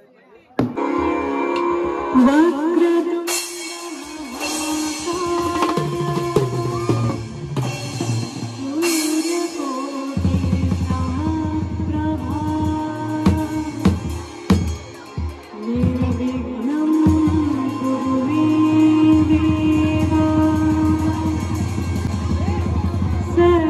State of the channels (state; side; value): identical; both; correlation 1.00